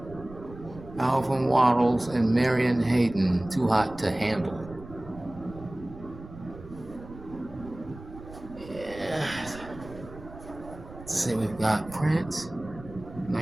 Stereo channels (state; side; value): noise; right; rumble, 16 dB below the sound